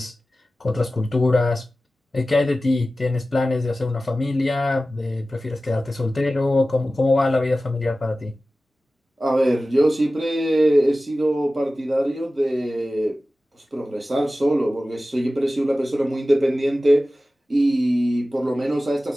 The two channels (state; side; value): normal; both; correlation 0.95